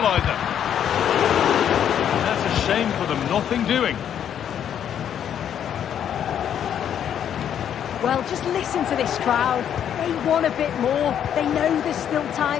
That's a shame for them, nothing doing. Well, just listen to this crowd. They want a bit more. They know there's still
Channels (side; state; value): right; quieter; 9.4 dB